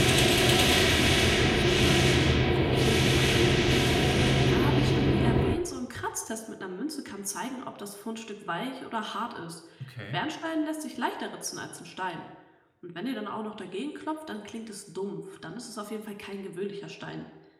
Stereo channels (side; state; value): both; identical; correlation 1.00